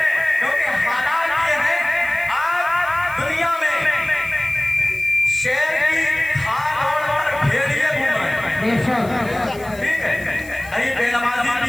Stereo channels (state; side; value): noise; left; hiss, 21 dB below the sound